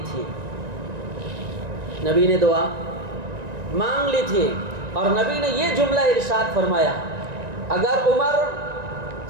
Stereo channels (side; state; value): left; late; 1.9 ms